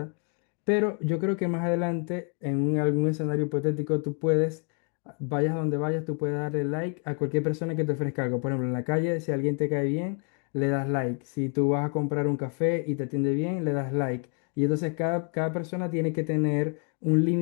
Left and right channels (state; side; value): quieter; right; 37.4 dB